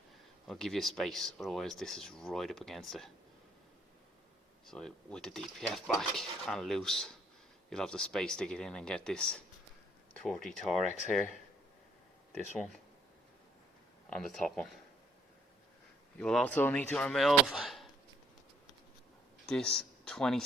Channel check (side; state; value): both; normal; correlation 0.66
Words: I'll give you space, otherwise this is right up against it. So with the DPF back and loose, you'll have the space to get in and get this 30 Torex here. This one. And the top one. You will also need to remove this